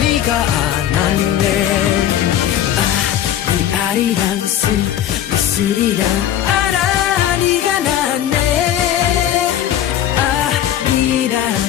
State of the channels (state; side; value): quieter; right; 11.1 dB